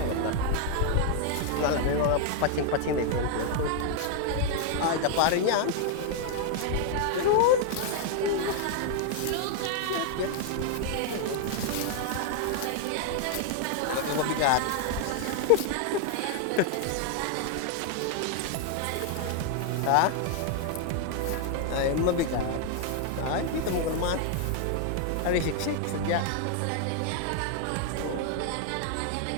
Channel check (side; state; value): both; different; correlation 0.00